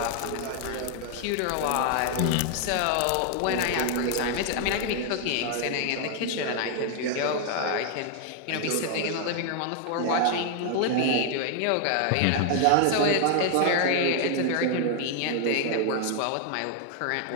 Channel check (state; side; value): different; both; correlation 0.00